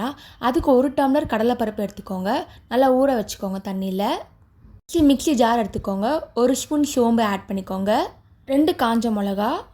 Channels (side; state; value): both; identical; correlation 1.00